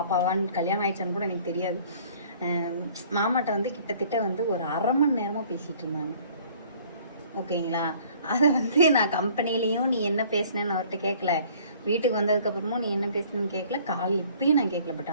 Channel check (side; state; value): both; inverted; correlation -0.54